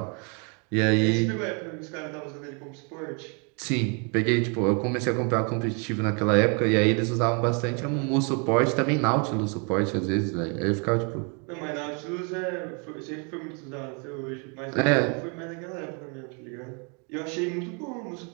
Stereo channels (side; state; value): left; quieter; 35.8 dB